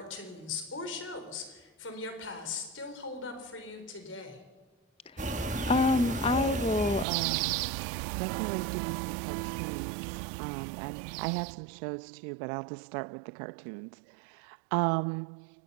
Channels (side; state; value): left; drops out; at 7.1 s